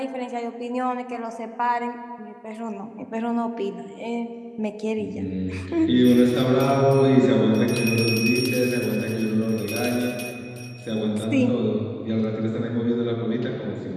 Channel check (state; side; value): identical; both; correlation 1.00